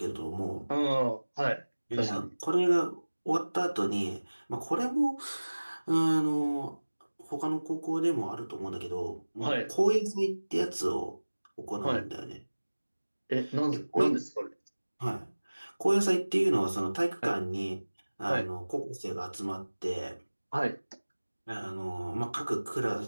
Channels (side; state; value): both; inverted; correlation -1.00